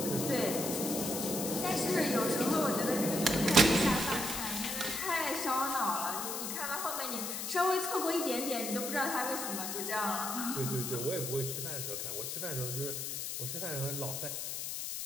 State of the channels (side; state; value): left; noise; hiss, 4 dB below the sound